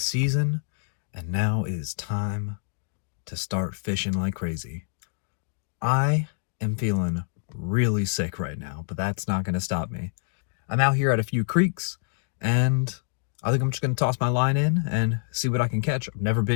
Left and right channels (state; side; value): silent; right; digital silence